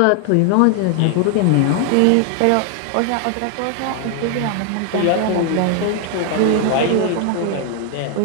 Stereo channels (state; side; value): different; both; correlation 0.00